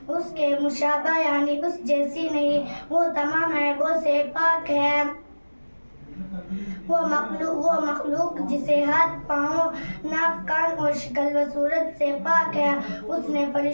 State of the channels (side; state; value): both; inverted; correlation -1.00